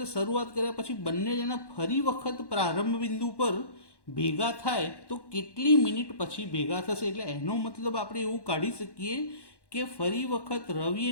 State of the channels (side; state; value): right; late; 1.1 ms